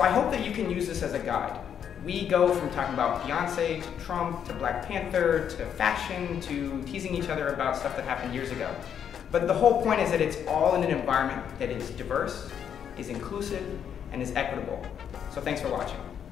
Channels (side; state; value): right; quieter; 8.5 dB